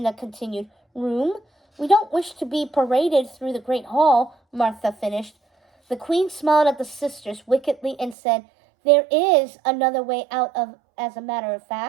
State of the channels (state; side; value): drops out; left; at 8.2 s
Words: continued. "Room? We don't wish to be paraded through the great hall," Martha finished. The queen smiled at the sisters wickedly and said, "There is another way out of, as a matter of